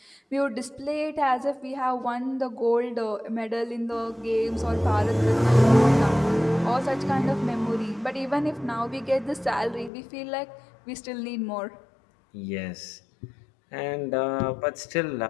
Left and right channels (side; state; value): right; drops out; at 9.9 s